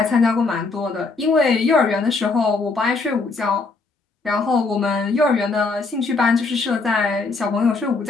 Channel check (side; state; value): right; quieter; 3.9 dB